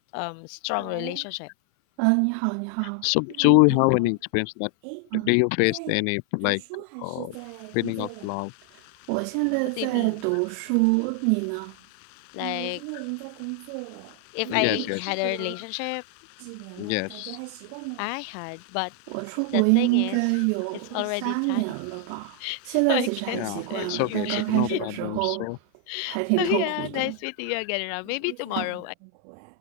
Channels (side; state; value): both; different; correlation 0.00